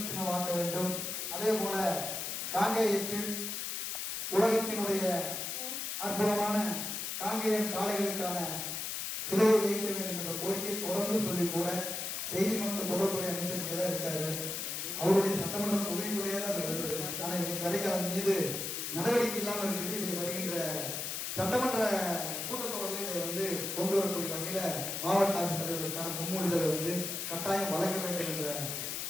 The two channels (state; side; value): noise; left; hiss, 3 dB below the sound